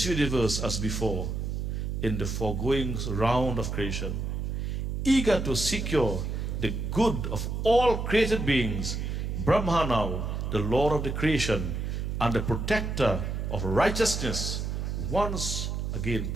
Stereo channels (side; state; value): right; noise; hum, 2 dB below the sound